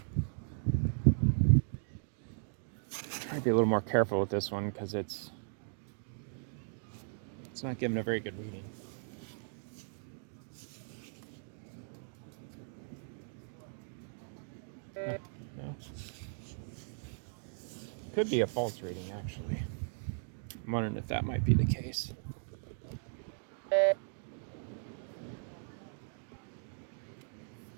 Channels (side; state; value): left; silent; digital silence